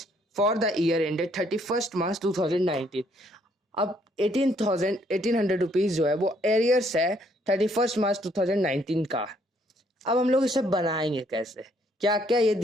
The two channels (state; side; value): normal; both; correlation 0.68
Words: for the year ended 31 March 2019। अब 1800 रुपीज जो है वो एरियर्स है 31 मार्च 2019 का। अब हम लोग इसे बनाएंगे कैसे, क्या क्या ये